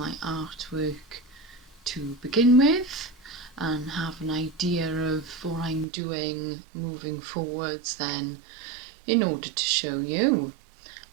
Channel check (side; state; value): left; drops out; at 5.9 s